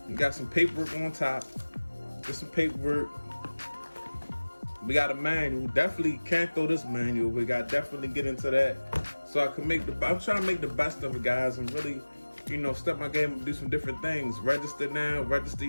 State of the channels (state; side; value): inverted; both; correlation -1.00